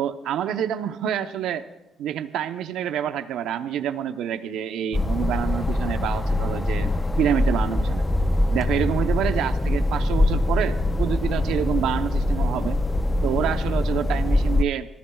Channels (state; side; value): normal; both; correlation 0.79